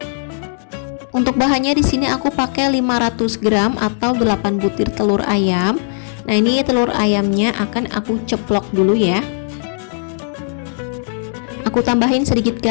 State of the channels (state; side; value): silent; right; digital silence